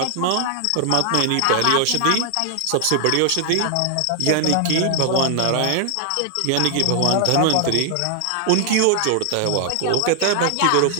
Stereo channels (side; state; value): both; different; correlation 0.00